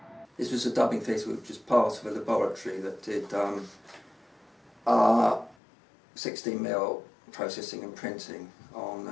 This was a dubbing theatre which was part of a laboratory that did 16mm processing and printing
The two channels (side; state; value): right; drops out; at 5.6 s